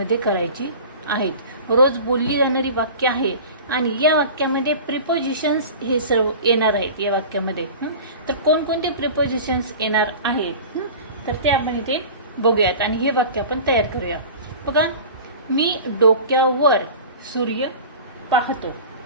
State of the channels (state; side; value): inverted; both; correlation -0.36